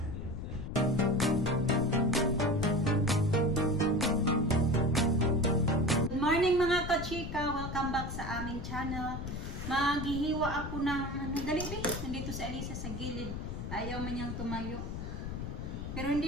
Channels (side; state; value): left; noise; rumble, 6 dB below the sound